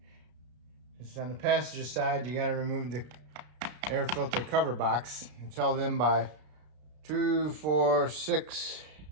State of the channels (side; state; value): left; late; 33 ms